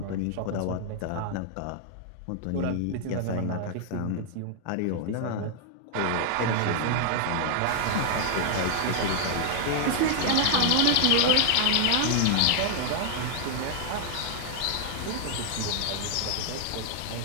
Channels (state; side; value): different; both; correlation 0.00